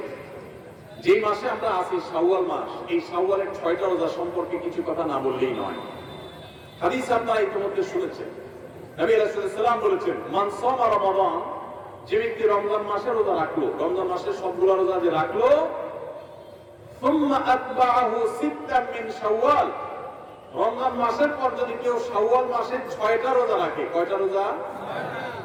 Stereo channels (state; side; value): identical; both; correlation 1.00